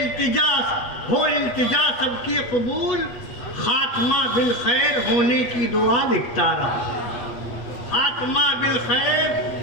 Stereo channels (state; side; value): late; right; 8.3 ms